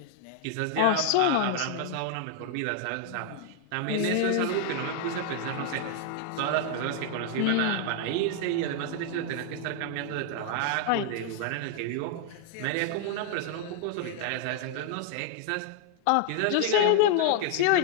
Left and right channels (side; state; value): both; different; correlation 0.00